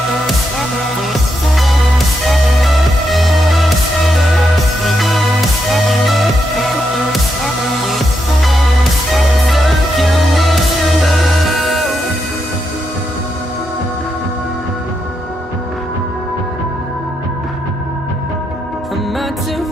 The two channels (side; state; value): both; normal; correlation 0.82